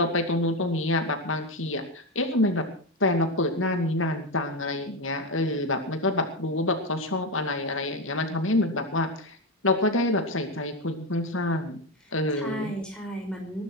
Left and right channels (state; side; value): normal; both; correlation 0.13